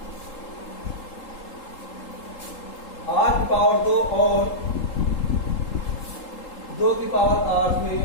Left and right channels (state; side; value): late; right; 3.8 ms